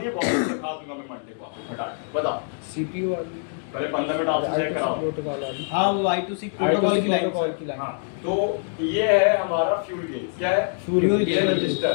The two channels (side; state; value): right; silent; 62 dB below the other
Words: है, बहुत सिखा दूंगा मैं मंडे को आपको फटाक बताओ। CPU वाली, पहले 15 मिनट आपसे चेक कराओ। प्रोटोकॉल वाली, हाँ वो I2C प्रोटोकॉल की लाइन। प्रोटोकॉल की लाइन। हाँ, तो ये है हमारा फ्यूल गेज, क्या है फ्यूल ये गेज। रजिस्टर,